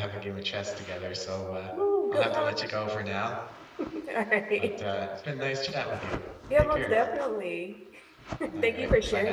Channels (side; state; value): both; identical; correlation 1.00